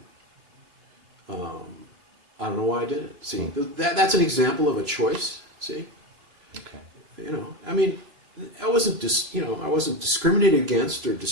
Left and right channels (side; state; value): left; late; 3.0 ms